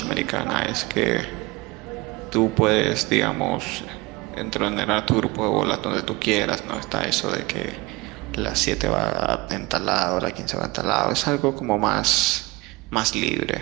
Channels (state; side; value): quieter; left; 23.0 dB